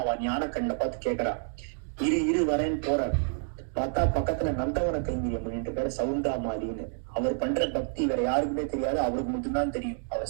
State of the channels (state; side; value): silent; left; 59 dB below the other